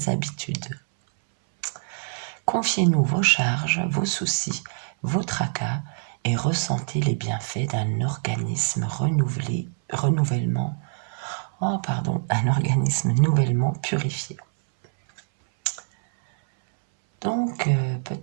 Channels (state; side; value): silent; left; 62 dB below the other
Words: habitudes. Confiez-nous vos charges, vos soucis, vos tracas et ressentez les bienfaits d'un organisme un organisme nouvellement purifié. Donc,